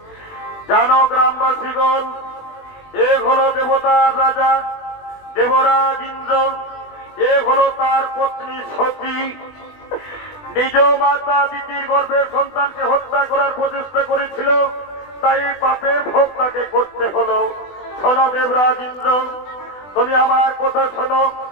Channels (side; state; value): right; late; 20 ms